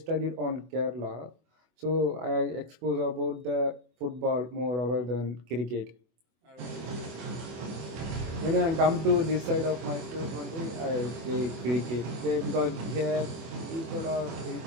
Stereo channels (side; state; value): left; late; 24 ms